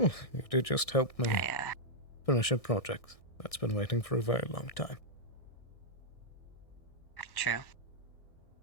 you did just help me finish a project that's been waiting for a very long time. True.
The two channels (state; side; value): late; right; 1.6 ms